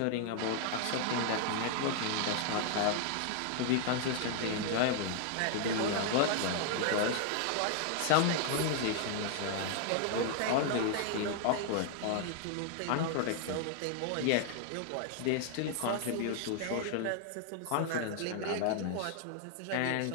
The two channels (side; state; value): both; different; correlation 0.00